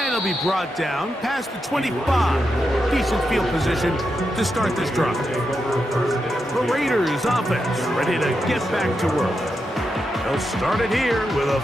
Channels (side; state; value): both; normal; correlation 0.86